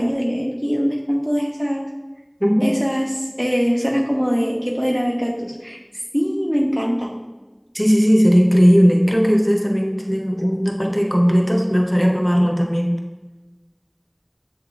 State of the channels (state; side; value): identical; both; correlation 1.00